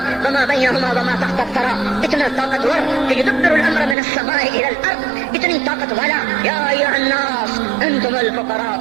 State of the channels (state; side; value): drops out; left; at 4.0 s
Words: وما بینہما وما تحت الثری، اتنا طاقتور کہ یدبر الامر من السماء الى الارض، اتنی طاقت والا۔ یا ایھا الناس انتم الفقراء